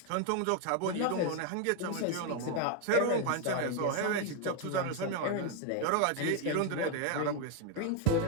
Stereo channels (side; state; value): both; different; correlation 0.01